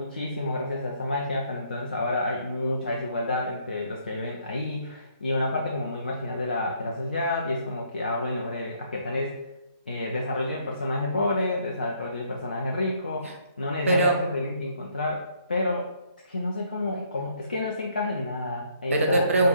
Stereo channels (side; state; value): both; inverted; correlation -0.68